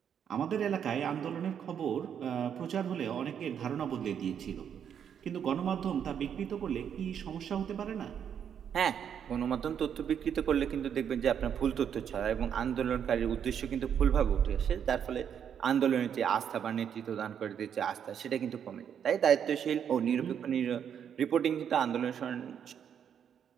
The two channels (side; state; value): left; quieter; 8.4 dB